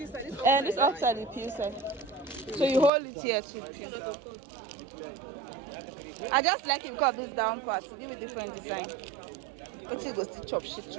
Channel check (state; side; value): drops out; left; at 2.9 s